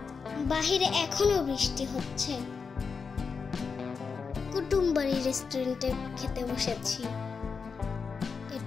বাহিরে এখনো বৃষ্টি হচ্ছে। কুটুমবাড়ি রেস্টুরেন্টে খেতে বসেছি।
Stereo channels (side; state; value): right; quieter; 5.4 dB